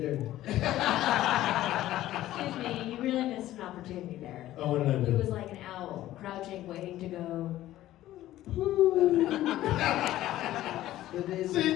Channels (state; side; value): quieter; right; 14.4 dB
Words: Excuse me, you really missed an opportunity there. Oh, what did I He do? was like an owl, crouching, waiting to go. See,